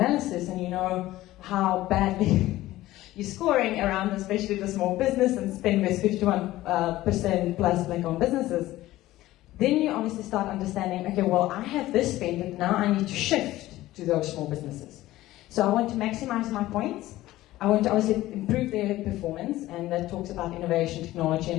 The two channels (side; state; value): right; quieter; 16.2 dB